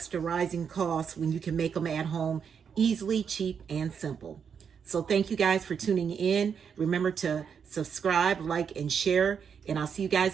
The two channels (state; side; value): quieter; left; 7.0 dB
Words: rising costs when you can make them at home easily, cheap, and simple? So thank you guys for tuning in. Remember to subscribe, like, and share. And I'll see you